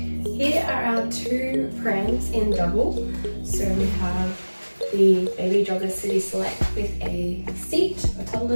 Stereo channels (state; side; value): inverted; both; correlation -1.00